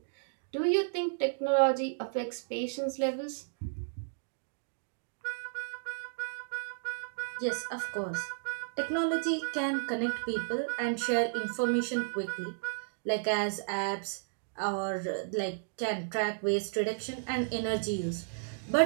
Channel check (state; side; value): silent; left; digital silence